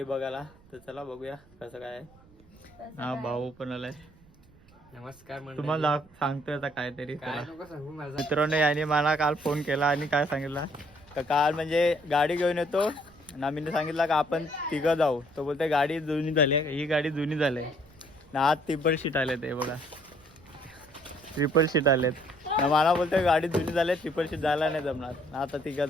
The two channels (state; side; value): noise; right; rumble, 27 dB below the sound